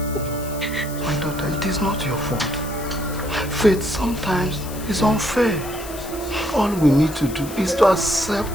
My daughter, it is not your fault. Fate sometimes is unfair. All we need to do is to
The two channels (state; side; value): noise; left; hiss, 14 dB below the sound